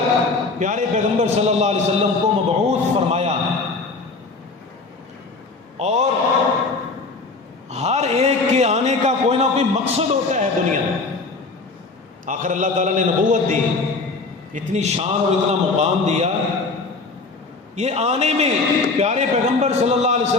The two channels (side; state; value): right; quieter; 3.8 dB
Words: پیارے پیغمبر صلی اللہ علیہ وسلم کو مبعوث فرمایا، اور ہر ایک کے آنے کا کوئی نہ کوئی مقصد ہوتا ہے دنیا میں۔ آخر اللہ تعالیٰ نے نبوت دی، اتنی شان اور اتنا مقام دیا، یہ آنے میں پیارے پیغمبر صلی اللہ علیہ